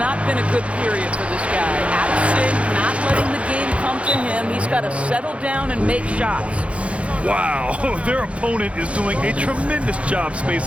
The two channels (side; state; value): left; late; 0.062 ms